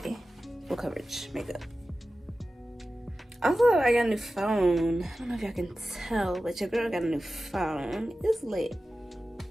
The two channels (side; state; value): both; normal; correlation 0.94